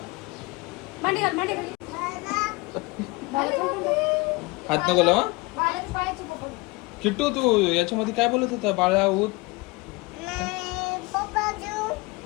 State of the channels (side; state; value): right; quieter; 24.4 dB